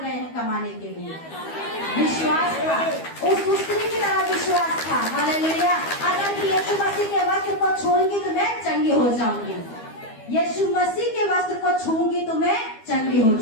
गए हैं कमाने के लिए। विश्वास था, उस स्त्री की तरह विश्वास था। हालेलुया। अगर यीशु मसीह के वस्त्र को छूंगी तो मैं चंगी हो जाऊंगी, यीशु मसीह के वस्त्र को छूंगी तो मैं चंगी हो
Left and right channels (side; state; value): right; late; 12 ms